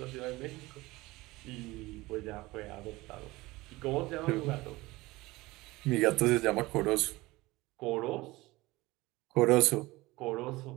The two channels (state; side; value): quieter; left; 20.4 dB